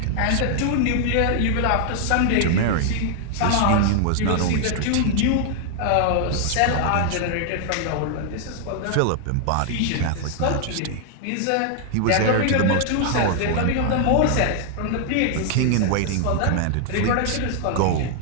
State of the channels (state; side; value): different; both; correlation 0.00